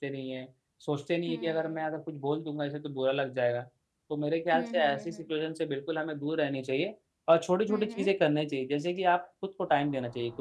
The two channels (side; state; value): both; identical; correlation 1.00